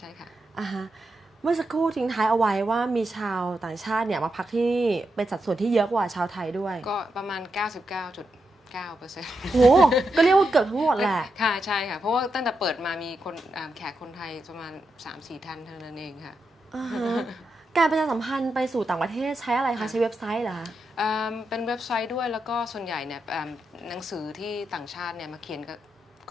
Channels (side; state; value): both; normal; correlation 0.85